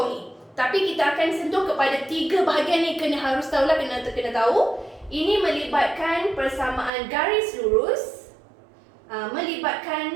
ni. Tapi kita akan sentuh kepada 3 bahagian ni. Harus tahulah, kena tahu. Ini melibatkan persamaan garis lurus,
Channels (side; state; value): left; drops out; at 6.9 s